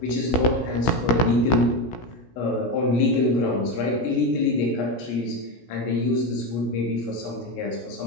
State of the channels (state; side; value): late; right; 16 ms